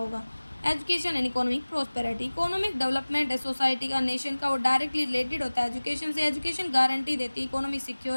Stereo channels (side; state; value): both; inverted; correlation -1.00